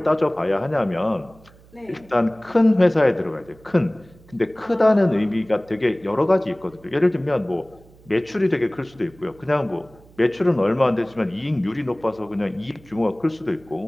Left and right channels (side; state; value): right; noise; hum, 26 dB below the sound